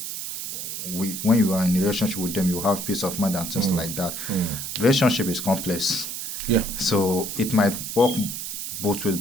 when you are in a relationship with them you have peace of mind and things like that. Relationship is complex, Yeah. so it might work both ways,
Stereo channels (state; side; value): noise; right; hiss, 5 dB below the sound